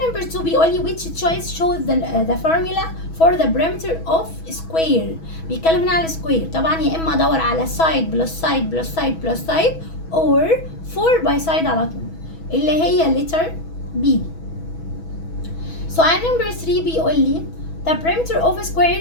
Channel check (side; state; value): right; late; 6.2 ms